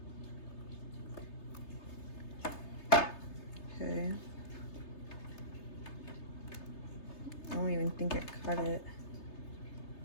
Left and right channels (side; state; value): right; late; 3.3 ms